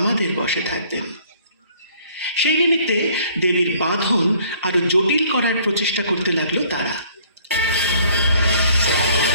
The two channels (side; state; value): both; inverted; correlation -0.58